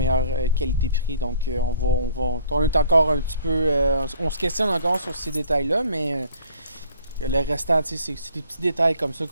qualité-prix. Donc, on est encore un petit peu... on se questionne encore sur ces détails-là, mais le restant, c'est des petits détails comme ça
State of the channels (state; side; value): inverted; both; correlation -0.57